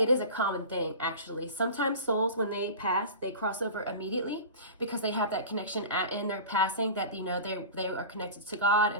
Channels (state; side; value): inverted; both; correlation -0.34